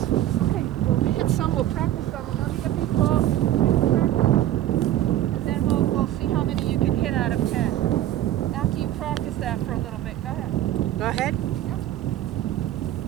Okay, we'll hit some, we'll practice some, and let me get these balls, and then we'll see how many you can hit out of 10. After you practice that for a little bit, go ahead. Go ahead. Yep.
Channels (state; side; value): quieter; left; 13.1 dB